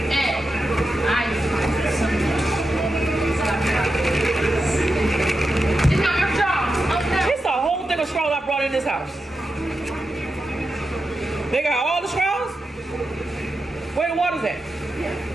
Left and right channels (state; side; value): normal; both; correlation 0.89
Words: And ice. It's not your straw. Okay. It's a whole thing of straws I brought in this house. They got all the straws? Where the water's at?